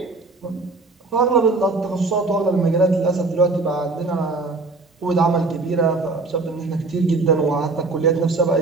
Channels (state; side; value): quieter; left; 3.6 dB